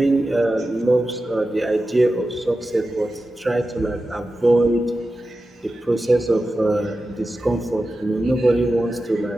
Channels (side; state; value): both; normal; correlation 0.93